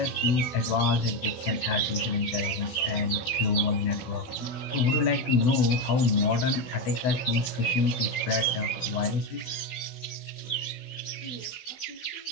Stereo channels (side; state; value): right; late; 16 ms